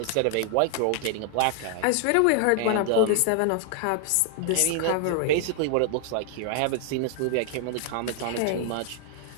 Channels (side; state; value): both; different; correlation 0.00